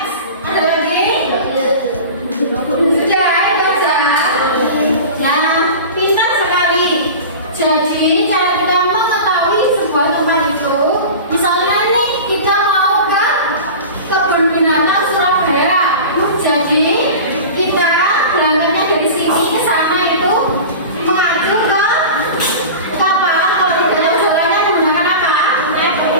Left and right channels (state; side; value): inverted; both; correlation -0.33